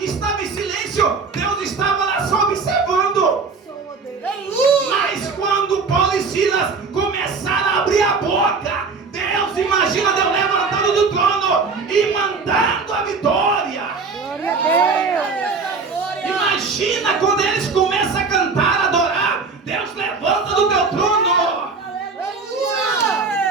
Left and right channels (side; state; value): left; quieter; 4.6 dB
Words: em silêncio, Deus estava lá só observando. Mas quando Paulo e Silas começaram a abrir a boca, Deus, imagina Deus levantando do trono e mandando a vitória. Glória a Deus. Imagina quando eles começam a cantar, a adorar, Deus levanta do teu trono.